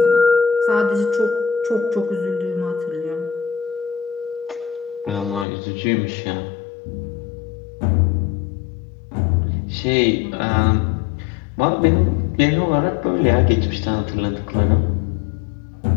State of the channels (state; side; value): drops out; right; at 5.5 s